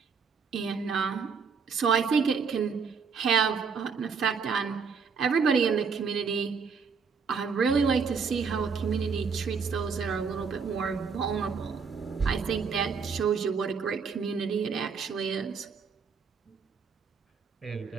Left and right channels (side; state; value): left; quieter; 5.7 dB